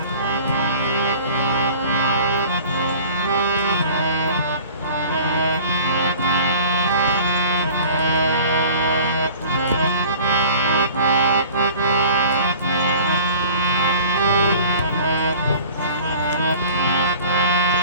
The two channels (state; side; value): inverted; both; correlation -0.44